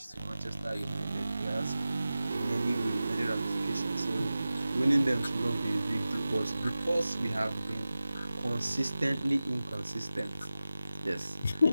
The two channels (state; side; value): inverted; both; correlation -0.95